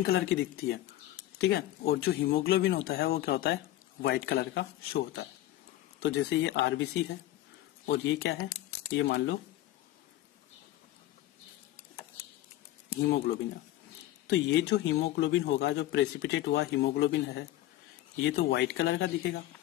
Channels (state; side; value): quieter; right; 14.8 dB